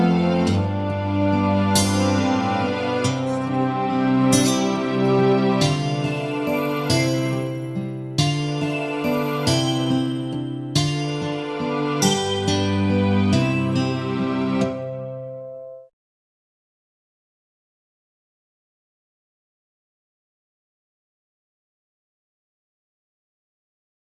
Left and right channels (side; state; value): both; identical; correlation 1.00